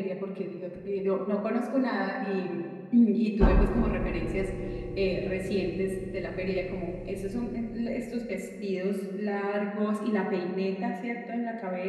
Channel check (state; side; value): identical; both; correlation 1.00